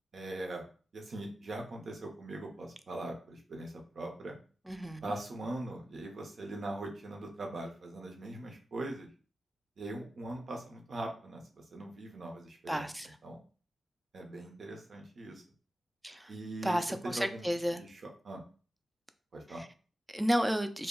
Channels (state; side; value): normal; both; correlation 0.94